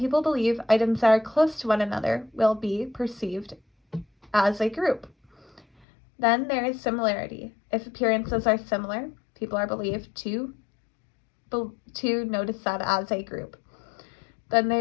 believe items that are close to one another will be perceived as a group. Then there is similarity. If appearances are similar, people are believed to notice that as a group. Then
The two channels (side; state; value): right; drops out; at 5.7 s